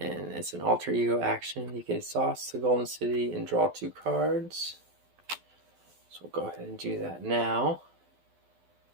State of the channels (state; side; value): late; left; 12 ms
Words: it's an alter ego action. You can exhaust the Golden City and draw 2 cards. So we'll go ahead and do that now.